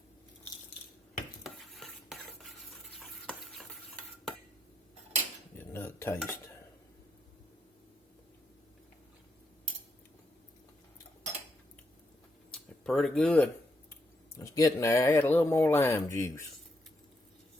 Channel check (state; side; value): normal; both; correlation 0.79